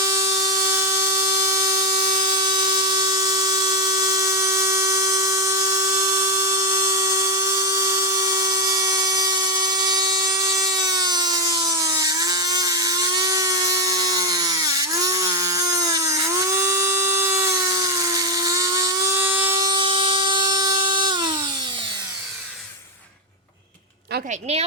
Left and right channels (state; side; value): normal; both; correlation 0.06